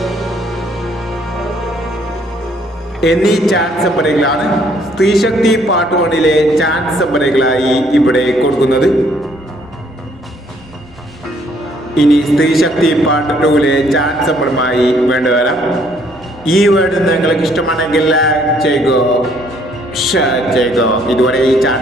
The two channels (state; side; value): normal; both; correlation 0.65